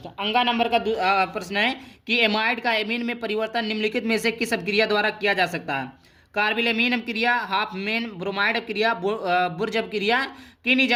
अंगा नंबर का प्रश्न है कि एमाइड का एमीन में परिवर्तन निम्नलिखित में से किस अभिक्रिया द्वारा किया जा सकता है? कार्बिलेमीन अपक्रिया, हाफमेन ब्रोमाइड अपक्रिया, बुर्ज अपक्रिया,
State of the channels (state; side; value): identical; both; correlation 1.00